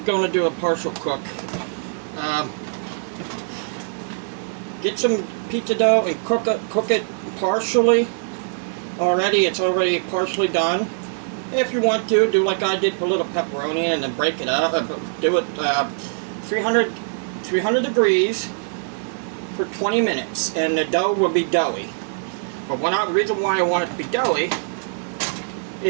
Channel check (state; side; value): silent; left; digital silence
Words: going to do a partial cook. Get some pizza dough and cook it partially. It's already partially done. If you want to, do like I did, put a little pepperoni and then break it up. Do it 300 degrees for 20 minutes, and the dough will be doughy. But the reason why I want it to be doughy